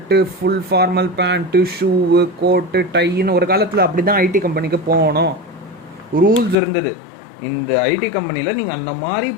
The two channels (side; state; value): right; drops out; at 6.6 s